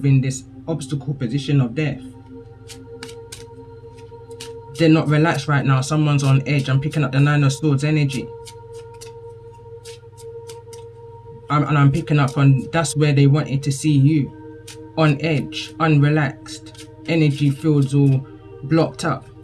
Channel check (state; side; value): identical; both; correlation 1.00